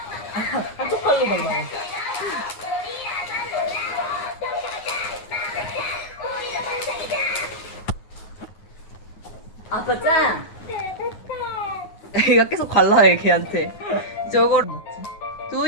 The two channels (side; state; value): right; late; 9.4 ms